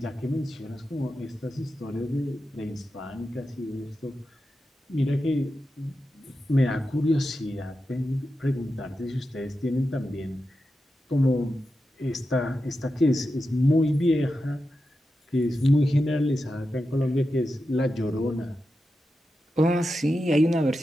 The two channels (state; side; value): normal; both; correlation 0.90